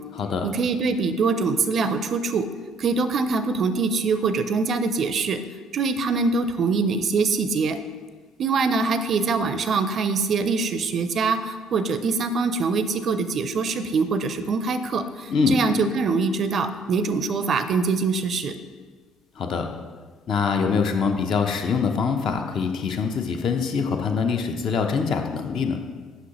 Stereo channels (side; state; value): both; normal; correlation 0.61